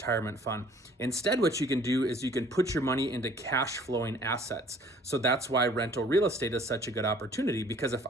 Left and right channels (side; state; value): both; normal; correlation 0.55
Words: fund? Instead, what you can do is you can put your money into cash flowing assets. So that's why rental real estate is such a good opportunity, because if